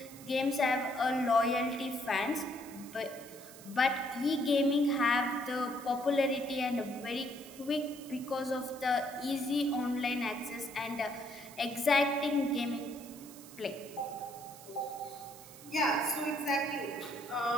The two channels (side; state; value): right; noise; hiss, 18 dB below the sound